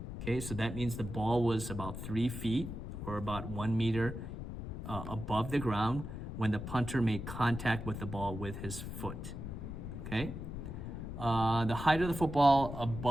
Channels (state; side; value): noise; left; rumble, 7 dB below the sound